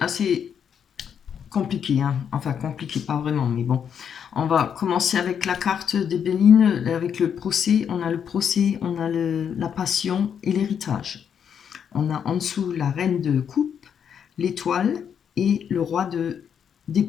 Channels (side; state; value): right; quieter; 7.9 dB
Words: assez compliqué, hein. Enfin compliqué, pas vraiment, mais bon. On va commencer avec la carte des Béline, avec le procès. On a le procès, on a la passion et l'héritage. On a en dessous la reine de coupe, l'étoile et le roi